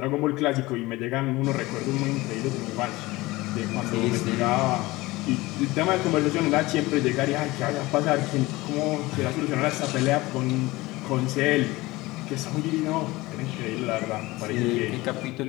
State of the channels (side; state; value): right; quieter; 20.3 dB